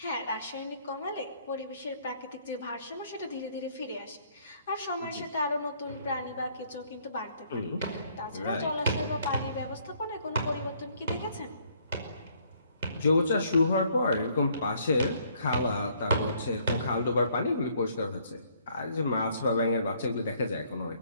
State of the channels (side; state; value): both; inverted; correlation -0.65